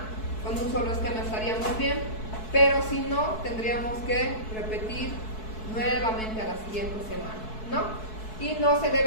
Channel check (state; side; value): late; right; 4.6 ms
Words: con un solo esquema estaríamos bien, pero si no, tendríamos que repetir nuevamente a la siguiente semana, ¿no? Y no se